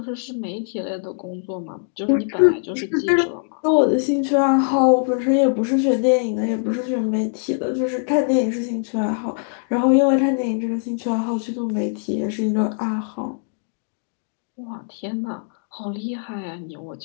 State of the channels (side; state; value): right; silent; 64 dB below the other